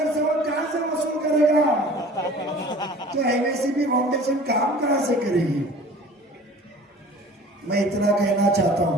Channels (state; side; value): normal; both; correlation 0.45